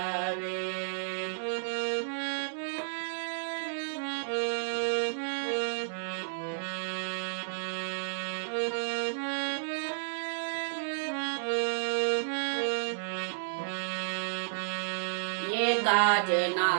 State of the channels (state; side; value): silent; left; digital silence